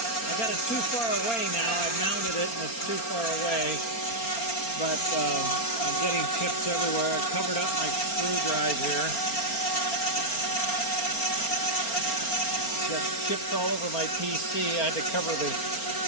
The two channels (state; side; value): late; right; 4.3 ms